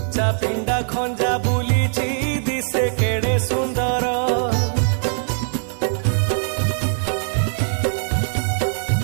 पिंडा खंजा बुलीची दिसे केड़े सुंदर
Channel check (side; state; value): left; silent; digital silence